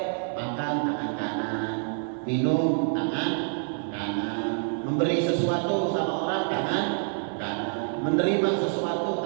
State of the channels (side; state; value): left; silent; digital silence